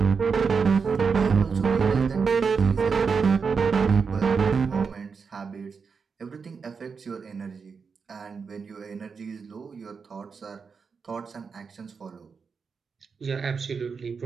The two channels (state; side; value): quieter; left; 5.5 dB